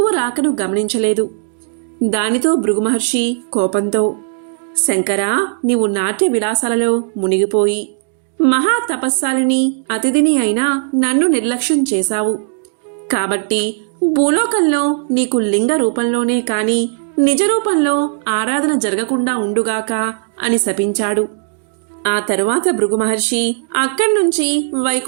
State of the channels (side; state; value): left; silent; digital silence